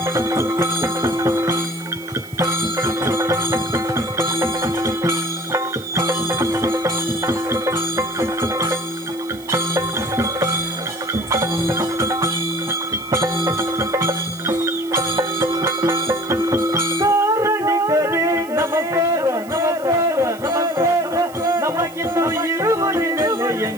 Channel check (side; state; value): right; noise; hiss, 21 dB below the sound